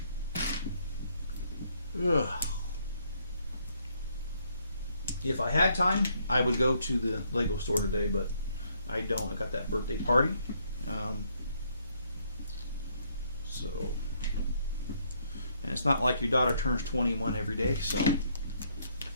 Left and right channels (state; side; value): inverted; both; correlation -0.70